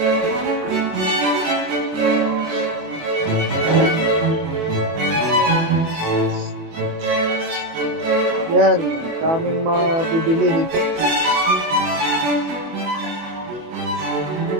Yan, daming mabibili dito.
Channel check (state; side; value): late; left; 24 ms